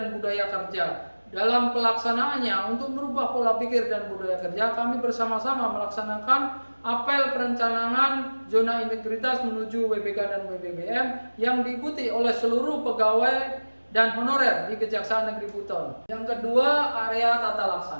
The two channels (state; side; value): inverted; both; correlation -1.00